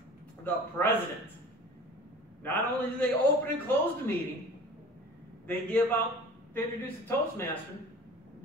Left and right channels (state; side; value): normal; both; correlation 0.42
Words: The President. Not only do they open and close the meeting, they introduce the Toastmaster,